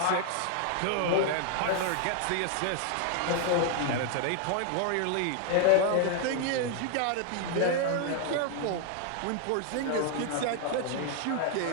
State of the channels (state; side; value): different; both; correlation 0.00